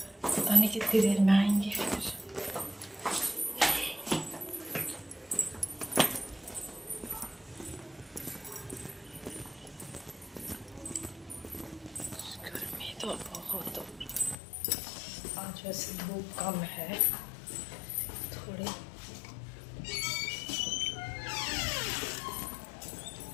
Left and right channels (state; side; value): drops out; right; at 14.4 s